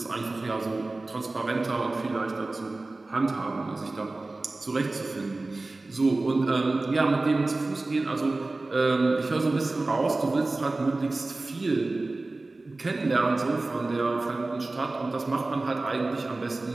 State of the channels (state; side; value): quieter; left; 3.2 dB